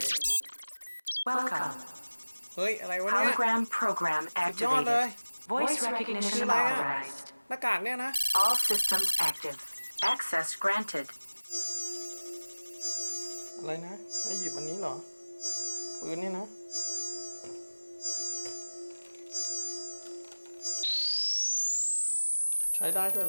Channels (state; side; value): inverted; both; correlation -1.00